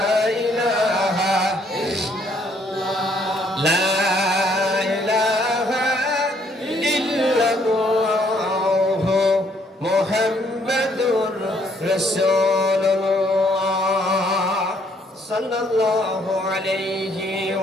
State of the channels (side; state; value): both; normal; correlation 0.67